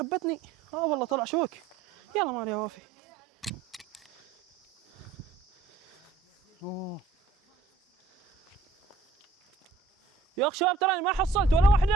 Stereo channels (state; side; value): quieter; left; 4.1 dB